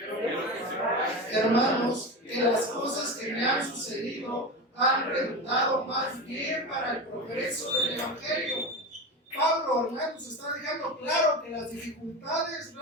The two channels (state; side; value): normal; both; correlation 0.23